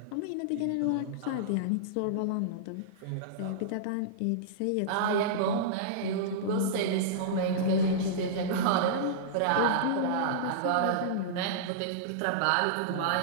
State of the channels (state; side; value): different; both; correlation -0.03